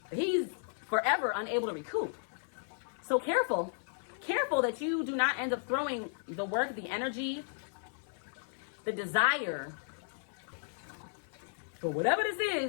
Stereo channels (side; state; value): right; silent; 55 dB below the other